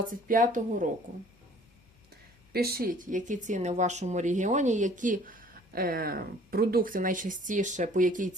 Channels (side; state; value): both; normal; correlation 0.54